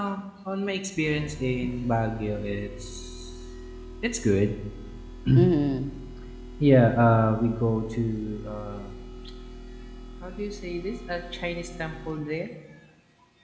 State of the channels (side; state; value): both; identical; correlation 1.00